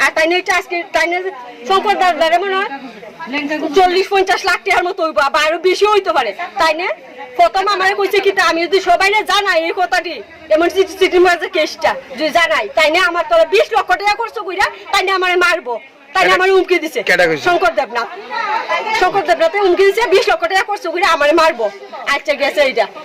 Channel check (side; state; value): both; identical; correlation 1.00